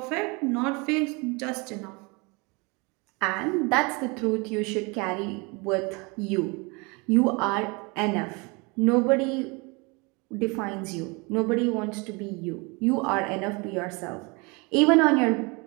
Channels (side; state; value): left; quieter; 28.6 dB